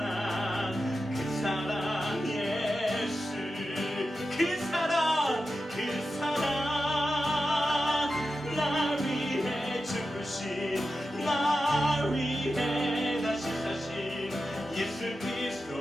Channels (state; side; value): normal; both; correlation 0.91